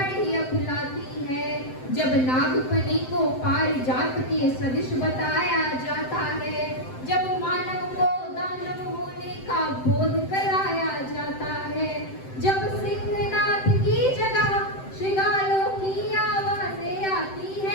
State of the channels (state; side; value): late; right; 7.8 ms